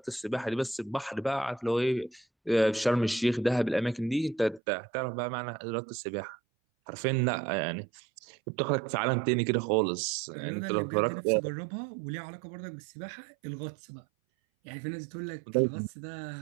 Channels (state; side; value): drops out; left; at 4.6 s